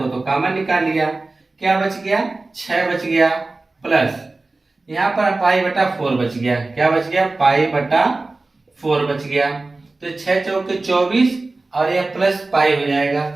तो कॉमन निकाल लिया। क्या बच गया? 6 बच गया, प्लस यहाँ पर पाई बटा 4 बच गया। क्या बच गया? पाई बटा 4 बच गया। तो 6 चौके 24 और यह प्लस पाई हो जाएगा।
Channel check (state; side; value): quieter; left; 3.3 dB